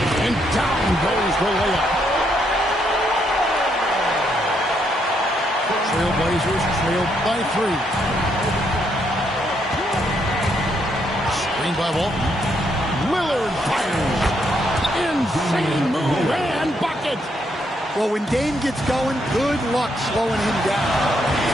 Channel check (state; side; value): normal; both; correlation 0.75